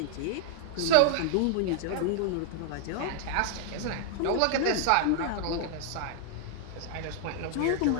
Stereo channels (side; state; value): both; different; correlation 0.00